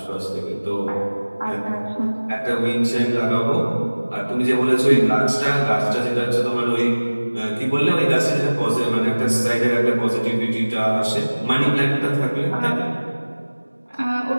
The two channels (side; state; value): both; inverted; correlation -1.00